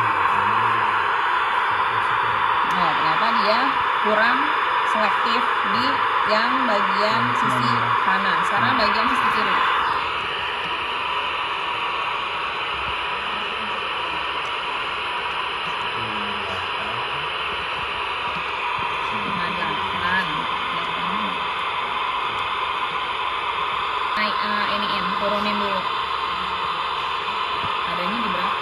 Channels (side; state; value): both; identical; correlation 1.00